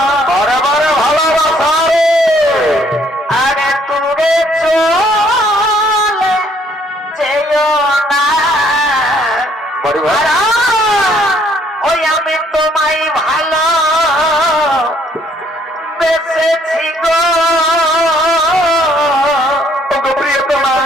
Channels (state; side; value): normal; both; correlation 0.65